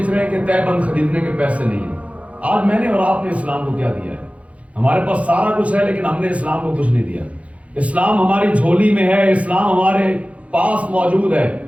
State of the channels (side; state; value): left; late; 0.065 ms